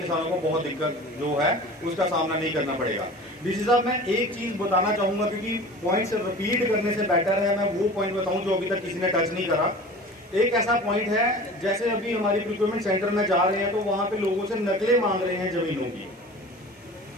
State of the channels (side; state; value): both; normal; correlation 0.39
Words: को बहुत दिक्कत जो है उसका सामना नहीं करना पड़ेगा। डीसी साहब मैं एक चीज बताना चाहूंगा, क्योंकि पॉइंट्स रिपीट करने से बेटर है मैं वो पॉइंट बताऊं जो अभी तक किसी ने टच नहीं करा। एक ऐसा पॉइंट है, जैसे अभी हमारी प्रोक्योरमेंट सेंटर में जा रहे हैं तो वहां पे लोगों से नकलें मांग रहे हैं जमीनों की।